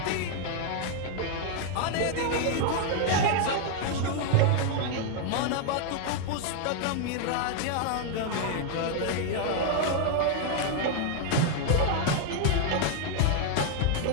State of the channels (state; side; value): different; both; correlation 0.00